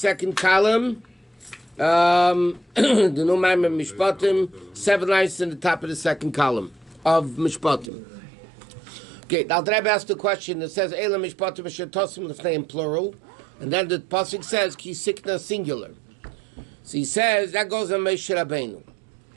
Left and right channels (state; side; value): drops out; left; at 7.9 s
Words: column. The new Maamarim Mishpatim. 7 lines in the top of the second column of Mishpatim. Okay, now the Rabbi asked the question. It says Eila Mishpatim Shetosim Lefnei in plural, and then the pasuk says Ki Sikna singular. So he says that goes on Moshe Rabbeinu.